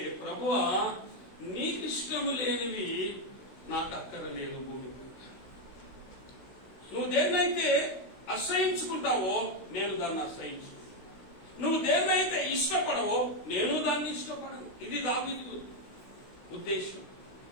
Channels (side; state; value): right; late; 16 ms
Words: ప్రభువా నీకు ఇష్టము లేనివి నాకు అక్కరలేదు. భూమి నువ్వు దేన్నైతే అసహించుకుంటావో నేను దాన్ని అసహించు, నువ్వు దేన్నైతే ఇష్టపడవో నేను దాన్ని ఇష్టపడను. ఇది దావీదు ఉద్దేశం.